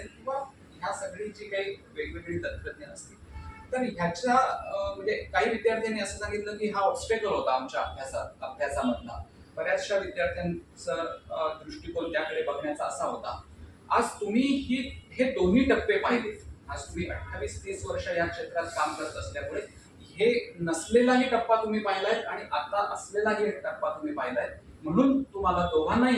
किंवा ह्या सगळी जी काही वेगवेगळी तंत्रज्ञान असतील तर ह्याच्या म्हणजे काही विद्यार्थ्यांनी असं सांगितलं की हा ऑब्स्टेकल होता आमच्या अभ्यासामधला. बऱ्याचशा विद्यार्थ्यांचा दृष्टिकोन त्याकडे बघण्याचा असा होता. आज तुम्ही हे दोन्ही टप्पे पाहिले, आज तुम्ही 28-30 वर्ष या क्षेत्रात काम करत असल्यामुळे हे नसलेलाही टप्पा तुम्ही पाहिलाय आणि आता असलेलाही एक टप्पा तुम्ही पाहिलाय. म्हणून तुम्हाला दोघांनाही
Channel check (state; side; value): identical; both; correlation 1.00